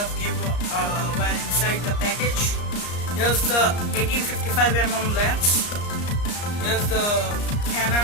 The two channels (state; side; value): late; right; 34 ms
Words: given were inside the package. Here's the 1855mm lens. Here's the